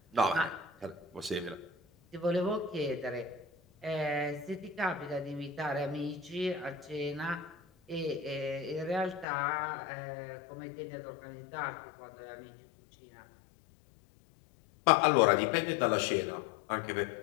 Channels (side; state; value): right; drops out; at 9.2 s